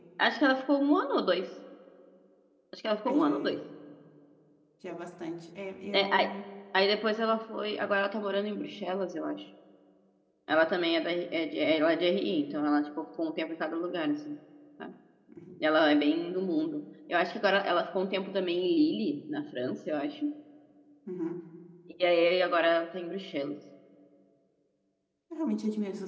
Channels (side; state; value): both; identical; correlation 1.00